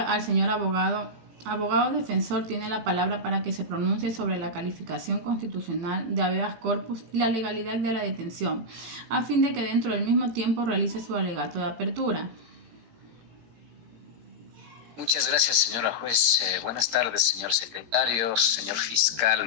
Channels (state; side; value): late; left; 17 ms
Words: al señor abogado. Abogado defensor tiene la palabra para que se pronuncie sobre la calificación constitucional de habeas corpus y la legalidad de la detención, a fin de que dentro del mismo tiempo realice su alegato de apertura. Muchas gracias, señora juez. Buenas tardes, señor secretario, señor fiscal.